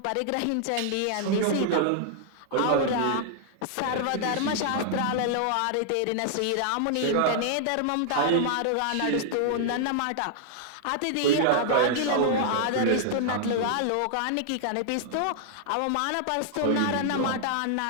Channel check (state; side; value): different; both; correlation -0.01